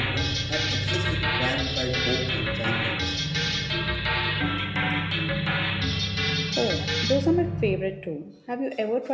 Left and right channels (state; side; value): identical; both; correlation 1.00